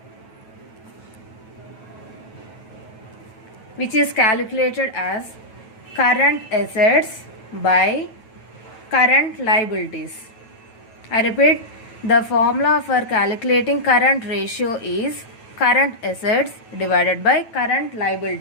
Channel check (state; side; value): late; right; 9.1 ms